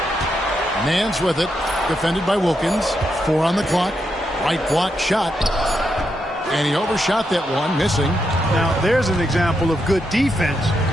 Nance with it. Defended by Wilkins. 4 on the clock. Right block shot. And he overshot that one, missing. Now, there's an example of good defense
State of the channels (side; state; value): both; normal; correlation 0.82